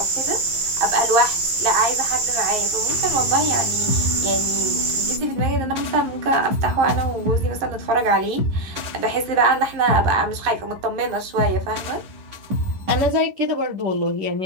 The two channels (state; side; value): late; left; 11 ms